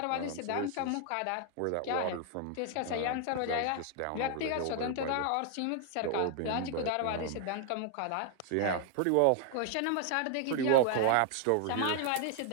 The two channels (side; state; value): both; different; correlation 0.00